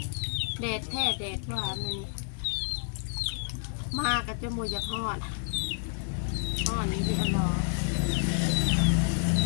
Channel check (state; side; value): silent; right; digital silence